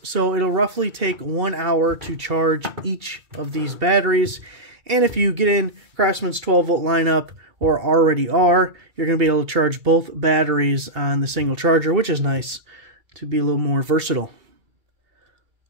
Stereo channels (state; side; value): late; left; 2.3 ms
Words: so it'll roughly take 1 hour to charge each of these batteries. And if you get in Craftsman's 12 volt lineup, or already are, you're going to be able to charge both batteries on the single charger, which is nice to be a little more versatile.